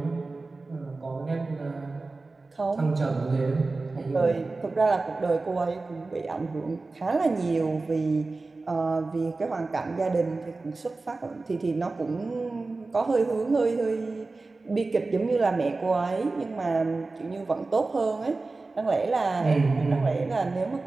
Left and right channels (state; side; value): quieter; left; 3.5 dB